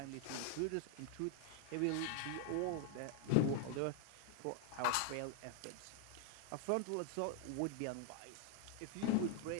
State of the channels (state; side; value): different; both; correlation 0.00